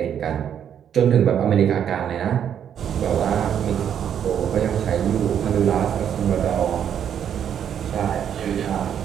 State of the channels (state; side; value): quieter; left; 8.9 dB